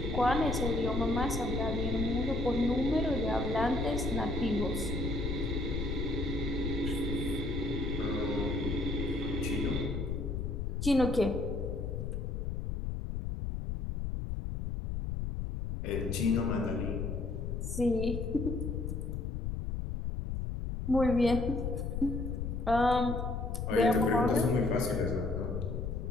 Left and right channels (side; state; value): left; noise; rumble, 3 dB below the sound